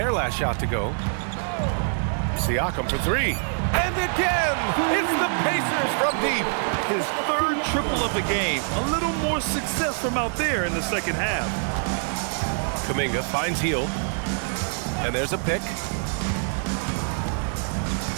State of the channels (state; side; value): silent; left; 59 dB below the other